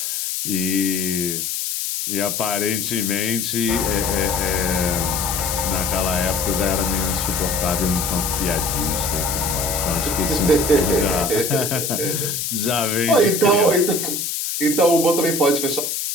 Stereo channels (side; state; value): left; noise; hiss, 2 dB below the sound